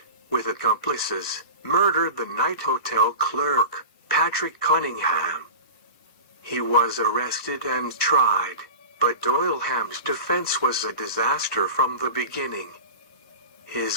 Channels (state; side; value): inverted; both; correlation -0.31